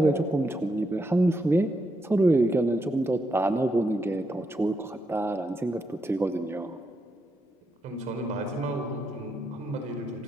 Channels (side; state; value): both; normal; correlation 0.81